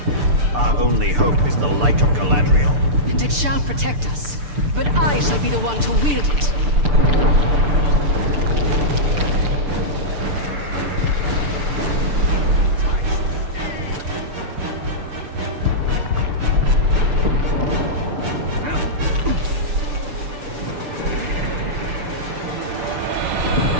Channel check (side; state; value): left; late; 6.8 ms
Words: Our only hope is the light of Galadriel. And it shall protect us. But I shall be the one to wield it.